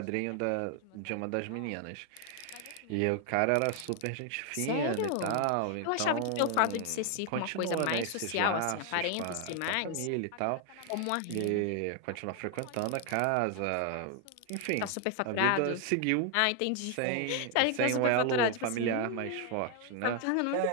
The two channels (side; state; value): both; different; correlation 0.00